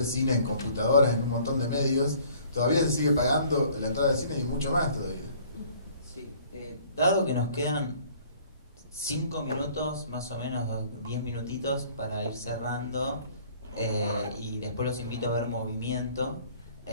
cine en computadoras, en un montón de medios, todavía se sigue pagando la entrada al cine y mucho más todavía? Sí, dado que nos quedan 5 minutos, más o menos 10 minutitos para ir cerrando, y después los invito a ver Movimiento,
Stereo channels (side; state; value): both; inverted; correlation -0.55